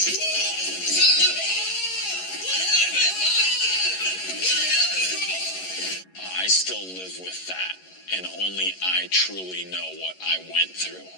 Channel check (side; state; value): right; late; 11 ms